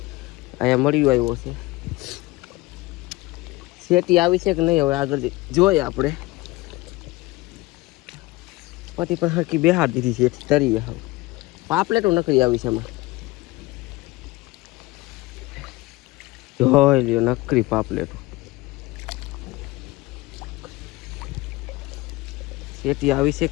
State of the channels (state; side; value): quieter; right; 20.7 dB